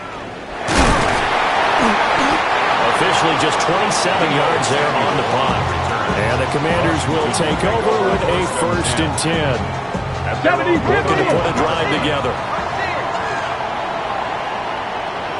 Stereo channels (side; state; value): both; identical; correlation 1.00